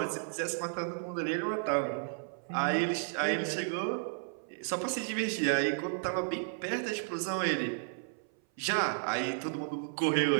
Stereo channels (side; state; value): left; silent; 56 dB below the other